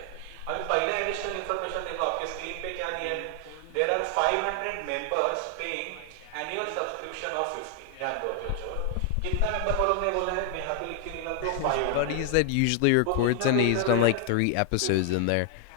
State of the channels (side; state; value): both; different; correlation 0.00